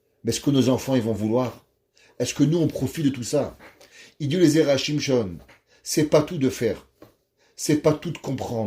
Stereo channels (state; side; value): identical; both; correlation 1.00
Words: Mais est-ce que nos enfants ils vont vouloir? Est-ce que nous on profite de tout ça? Il dit les Zerachim Shon, c'est pas tout de faire. C'est pas tout de